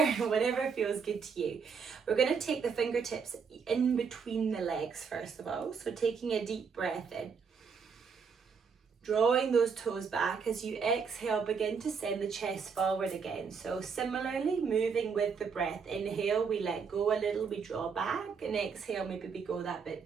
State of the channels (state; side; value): quieter; left; 5.9 dB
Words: Whatever feels good to you. We're going to take the fingertips in between the legs first of all. So taking a deep breath in. Drawing those toes back. As you exhale, begin to send the chest forward again. So similarly, moving with the breath. Inhale, we let go a little, we draw back. And exhale, maybe we go that bit